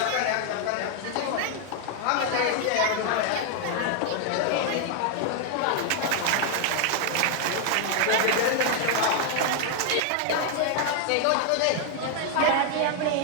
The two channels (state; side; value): different; both; correlation 0.00